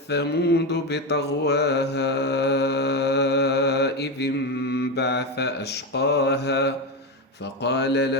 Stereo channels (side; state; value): both; normal; correlation 0.14